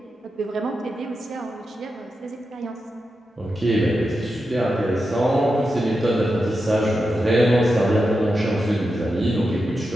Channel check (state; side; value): normal; both; correlation 0.89